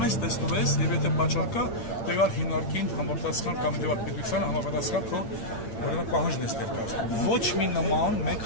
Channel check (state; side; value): late; right; 8.8 ms